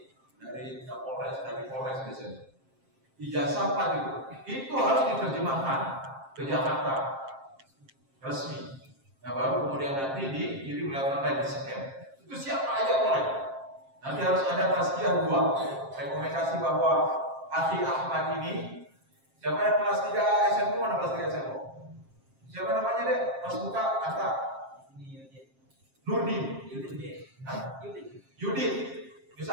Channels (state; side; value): late; left; 7.5 ms